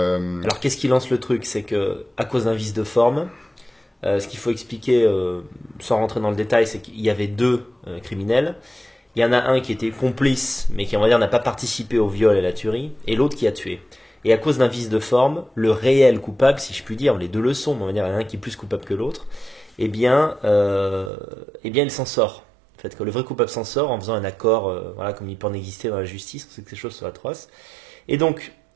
qu'est-ce qui lance le truc? C'est que, à cause d'un vice de forme, ce qu'il faut expliquer, sans rentrer dans le détail, c'est qu'il y avait 2 criminels. Il y en a un qui était complice, mais qui, on va dire, n'a pas participé au viol et à la tuerie, et l'autre qui a tué. Et à cause d'un vice de forme, le réel coupable, si je puis dire, les 2 le sont, mais on va dire, il y en a un qui est plus coupable que l'autre, eh bien, il s'en sort. En fait, que le vrai coupable s'en sort en faisant un accord, voilà, comme il peut en exister dans la justice, on sait que ces choses sont atroces. Et donc,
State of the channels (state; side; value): drops out; left; at 21.1 s